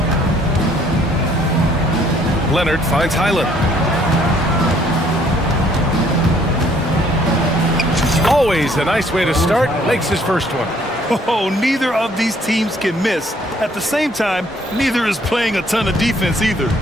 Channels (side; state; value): both; normal; correlation 0.63